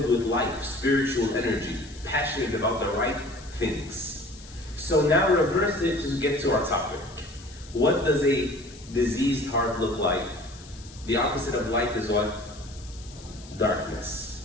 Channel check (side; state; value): left; noise; hiss, 20 dB below the sound